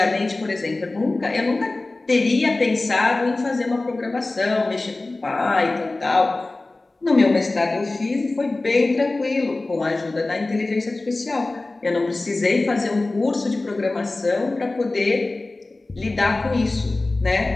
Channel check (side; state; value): right; quieter; 3.1 dB